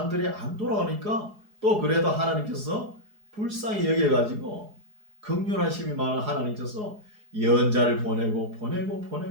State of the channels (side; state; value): left; late; 4.8 ms